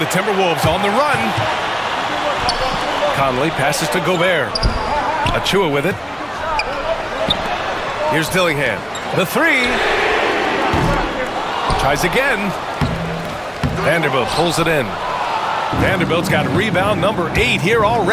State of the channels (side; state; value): both; identical; correlation 1.00